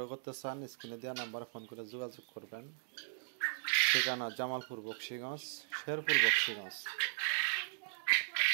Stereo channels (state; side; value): silent; left; digital silence